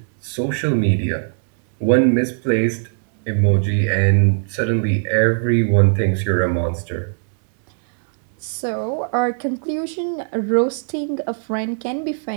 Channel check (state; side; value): silent; left; 65 dB below the other